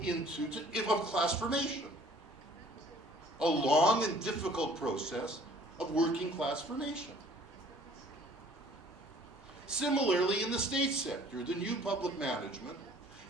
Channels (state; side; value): normal; both; correlation 0.54